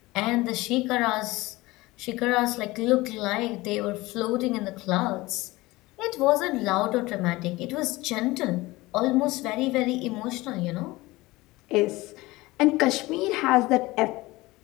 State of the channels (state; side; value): quieter; right; 20.3 dB